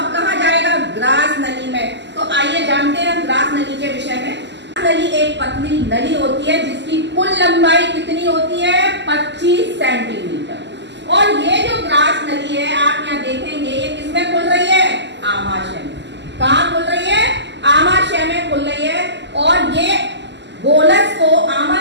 कहां जाएगा? ग्रास नली में। तो आइए जानते हैं ग्रास नली के विषय में। नली एक पतली नली होती है जिसकी कुल लंबाई कितनी होती है? 25 सेंटीमीटर। और ये जो ग्रास नली है आप यहाँ देखेंगे ये किसमें खुल रही है? आमाशय में। कहाँ खुल रही है? आमाशय में खुल रही है। और ये बोलस को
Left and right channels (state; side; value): late; left; 0.51 ms